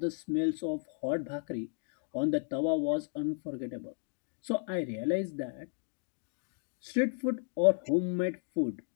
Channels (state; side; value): silent; right; 55 dB below the other